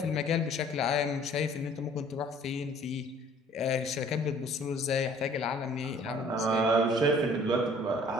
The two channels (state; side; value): normal; both; correlation 0.54